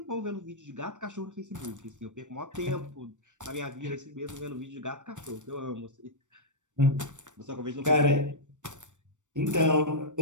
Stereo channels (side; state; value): left; late; 0.85 ms